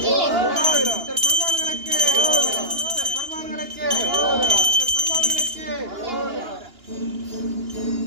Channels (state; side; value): late; left; 2.9 ms